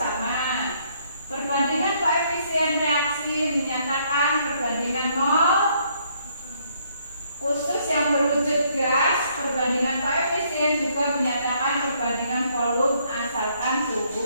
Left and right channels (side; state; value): both; inverted; correlation -0.68